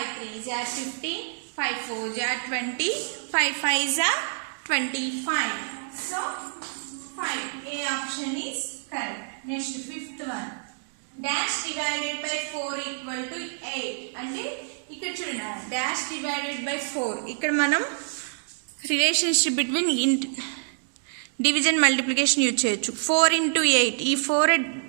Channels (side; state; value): left; silent; digital silence